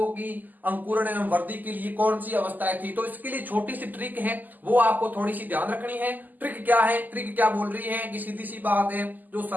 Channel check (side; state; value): left; late; 0.084 ms